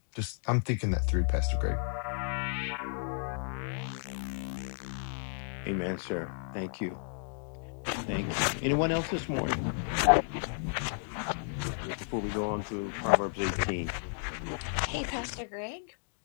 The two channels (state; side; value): silent; right; digital silence